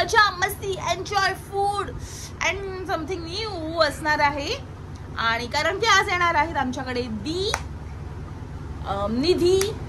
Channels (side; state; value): both; identical; correlation 1.00